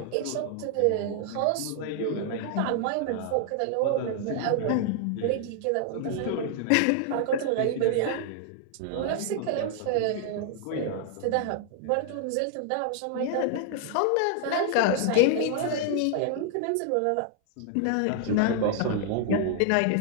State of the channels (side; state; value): both; different; correlation 0.00